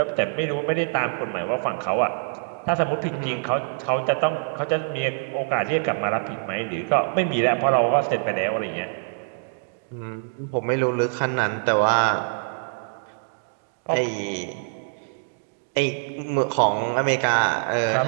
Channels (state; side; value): silent; left; digital silence